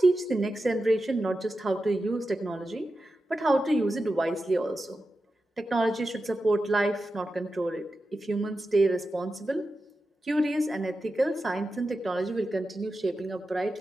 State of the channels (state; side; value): normal; both; correlation 0.91